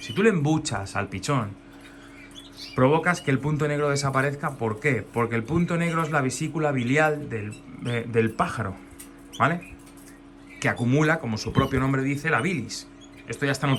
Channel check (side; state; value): both; identical; correlation 1.00